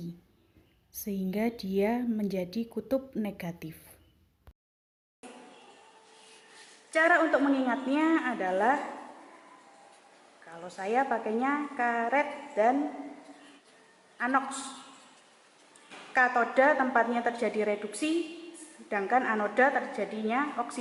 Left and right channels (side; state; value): both; identical; correlation 1.00